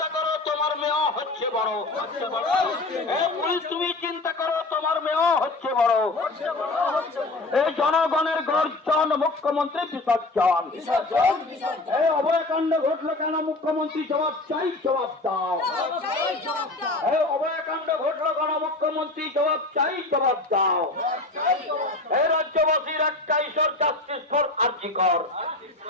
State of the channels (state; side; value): quieter; right; 3.0 dB